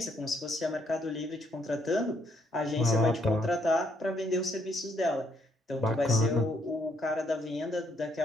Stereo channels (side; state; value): both; normal; correlation 0.71